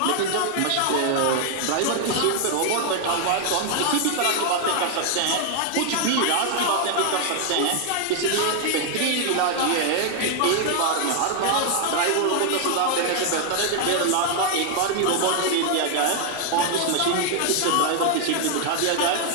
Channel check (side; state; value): both; different; correlation 0.00